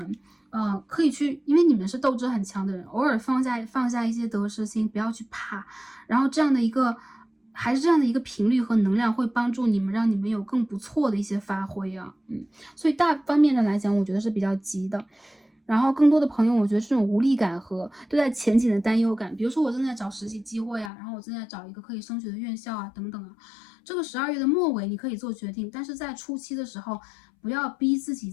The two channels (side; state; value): right; drops out; at 20.9 s